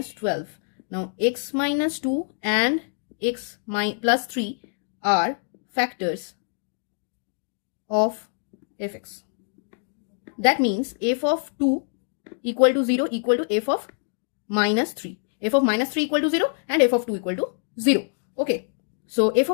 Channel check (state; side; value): silent; right; digital silence